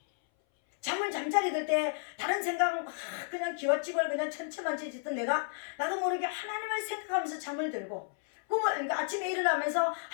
잠자리 들 때 다른 생각 막 그냥 기와집을 그냥 천체만체 짓던 내가 나도 모르게 하나님을 생각하면서 잠을 들고, 그러니까 아침에 일어나면서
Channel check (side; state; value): right; silent; 56 dB below the other